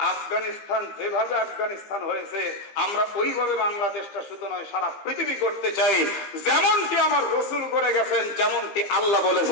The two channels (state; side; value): late; right; 15 ms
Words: আফগানিস্তান যেভাবে আফগানিস্তান হয়েছে আমরা ওইভাবে বাংলাদেশটা শুধু নয় সারা পৃথিবী করতে চাই। যেমনটি আমার রসুল করে গেছেন, যেমনটি আল্লাহ